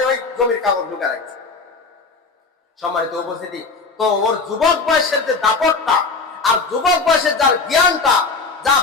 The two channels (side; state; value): right; quieter; 4.2 dB